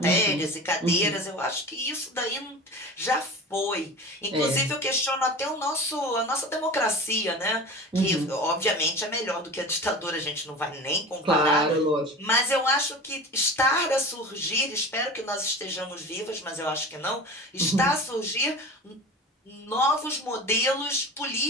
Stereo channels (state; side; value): normal; both; correlation 0.34